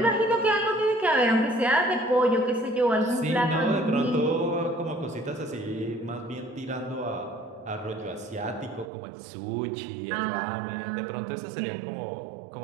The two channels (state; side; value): drops out; left; at 8.9 s